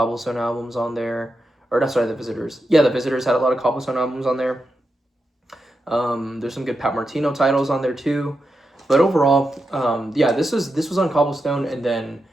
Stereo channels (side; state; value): both; normal; correlation 0.87